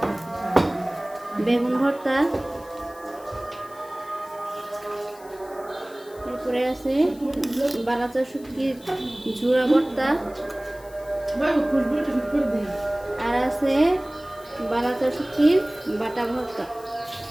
বেগুন ভর্তা। এরপরে আছে বালাচা শুটকির ঝুড়া ভর্তা। আর আছে বালাচা শুটকির বাটা ভর্তা।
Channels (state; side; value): noise; left; hiss, 24 dB below the sound